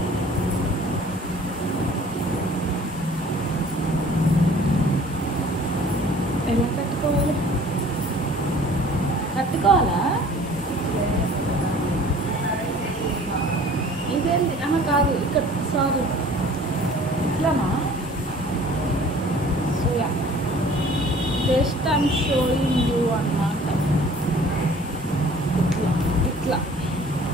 ఎలా కట్టుకోవాలి? కట్టుకోవాలా? ఇదేంటి? కాదు, ఇక్కడ సారీ ఇట్లానా? సోయా జస్ట్ ఐమ్ షోయింగ్ యూ అన్నమాట. ఇట్లా ఇట్లా.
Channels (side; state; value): both; normal; correlation 0.50